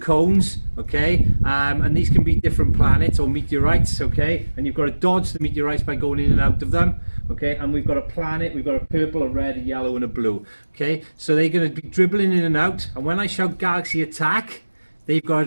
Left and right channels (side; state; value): both; inverted; correlation -1.00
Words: okay, and these can be different planets or meteorites, okay, and you've got to dodge the meteorites by going in and out of them, okay, and we've got a planet, we've got a purple, a red, a yellow and a blue, okay, so they're going to be dribbling in and out, and when I shout galaxy attack, they've got to